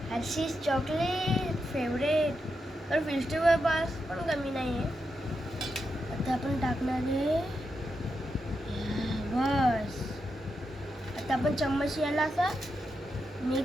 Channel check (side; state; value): both; normal; correlation 0.86